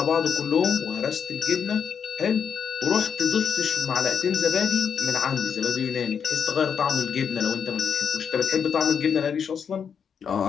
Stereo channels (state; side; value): quieter; right; 7.2 dB